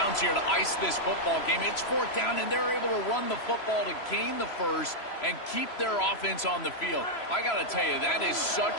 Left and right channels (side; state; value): right; late; 3.0 ms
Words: here to ice this football game. It's fourth down, and they're able to run the football to gain the first and keep their offense on the field. I got to tell you, that is